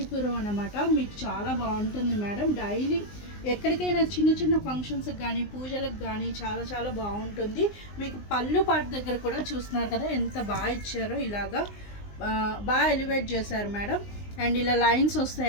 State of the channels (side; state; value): right; late; 19 ms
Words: అన్నమాట. మీకు చాలా బాగుంటుంది మేడం. డైలీ ఎక్కడికైనా చిన్న చిన్న ఫంక్షన్స్కి కానీ పూజలకు కానీ చాలా చాలా బాగుంటుంది. మీకు పళ్ళు పాటు దగ్గర కూడా చూస్తున్నారు కదా ఎంత బాగా ఇచ్చారో. ఇలాగా బాగా ఎలివేట్ చేశారు మేడం. అండ్ ఇలా లైన్స్